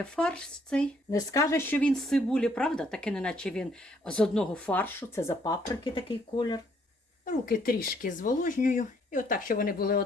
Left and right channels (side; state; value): both; normal; correlation 0.67